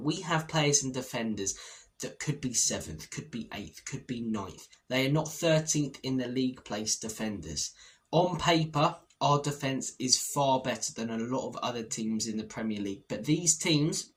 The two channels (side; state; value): both; identical; correlation 1.00